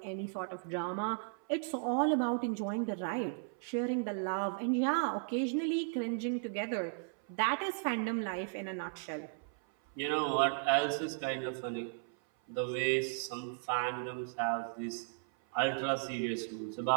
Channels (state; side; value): silent; left; 54 dB below the other